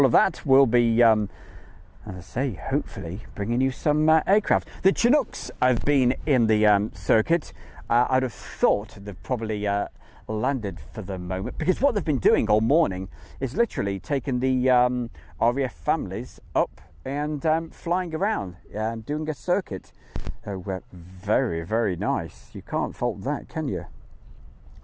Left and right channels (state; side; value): identical; both; correlation 1.00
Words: of that, we'll be, as I say, hopefully bringing you some aircraft. The Chinooks have been in the circuit. I'd have thought they've probably landed for the moment, because what they've been doing all morning is literally taking the RAF families up and flying around and doing a circuit. So very, very nice. You can't fault that, can you?